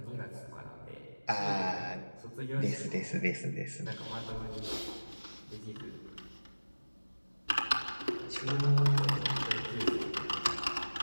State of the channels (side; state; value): both; inverted; correlation -1.00